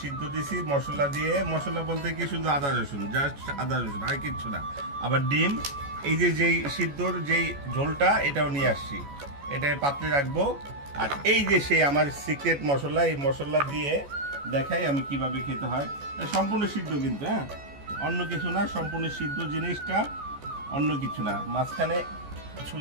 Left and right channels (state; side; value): late; left; 14 ms